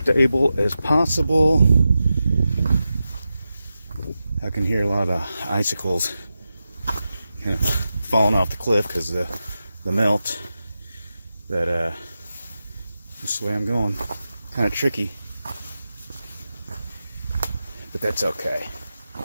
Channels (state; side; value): inverted; both; correlation -0.91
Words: as possible. I can hear a lot of icicles kind of falling off the cliff because of the melt. But this is the way I'm going. Kind of tricky, but that's okay.